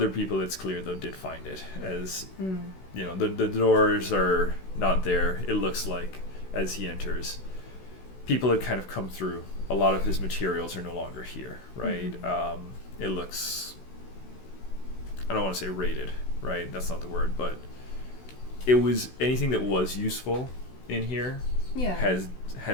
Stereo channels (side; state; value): right; late; 16 ms